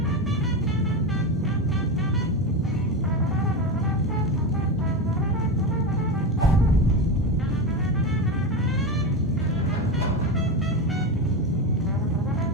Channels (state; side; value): normal; both; correlation 0.19